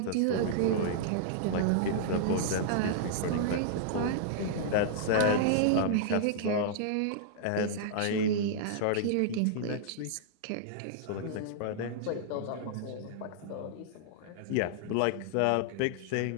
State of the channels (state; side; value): different; both; correlation -0.01